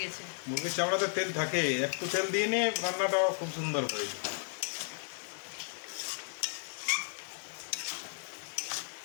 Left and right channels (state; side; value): silent; right; digital silence